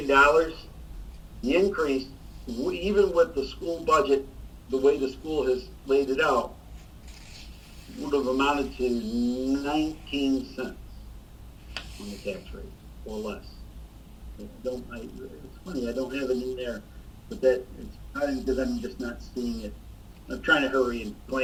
the increase, even with the school budget, the way the school has laid it out, would have amounted to 19 cents on the tax rate, or less. It's funny, I don't have it in there, but it's probably because I'm just not seeing it. I'm trying to hurry and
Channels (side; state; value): both; identical; correlation 1.00